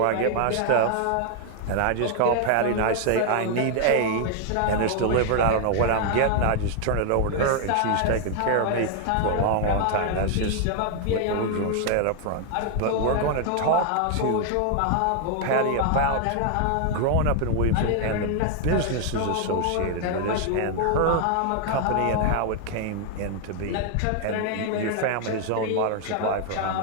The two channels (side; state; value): both; different; correlation 0.00